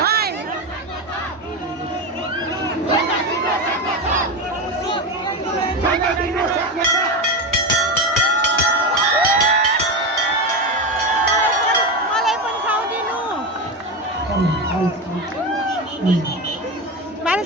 मलाई पनि खाउदिनु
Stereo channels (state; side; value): normal; both; correlation 0.18